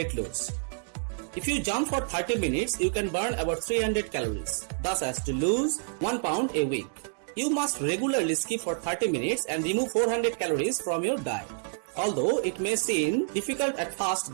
loss. If you jump for 30 minutes, you can burn about 300 calories, thus as to lose 1 pound a week. You must regularly skip for 30 minutes and remove 400 calories from your diet, although it may seem difficult at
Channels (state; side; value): silent; left; 59 dB below the other